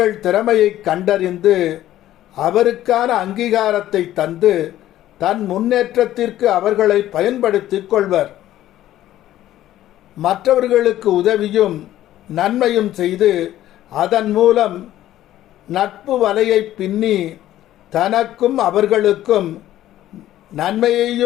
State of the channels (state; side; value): quieter; right; 13.5 dB